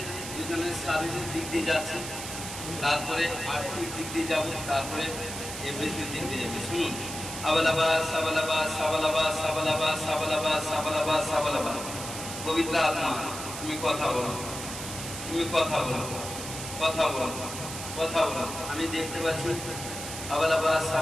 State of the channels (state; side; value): noise; right; hiss, 8 dB below the sound